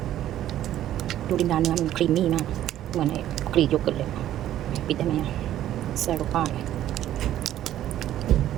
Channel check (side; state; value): left; quieter; 12.3 dB